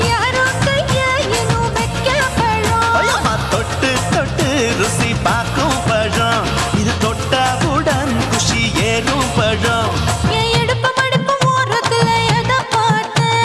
யாரோ கையா இன்னும் வைக்க பழம். ஐயம்மா தொட்டு தொட்டு ருசி பார்க்கும் பழம். இது தொட்டவுடன் குஷி ஏறும் பழம். என் இடுப்பு மடிப்பு ஓரத்துல எதை பார்த்த?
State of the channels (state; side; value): identical; both; correlation 1.00